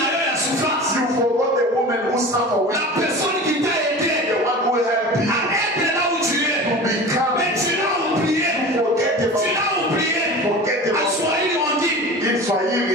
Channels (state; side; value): normal; both; correlation 0.35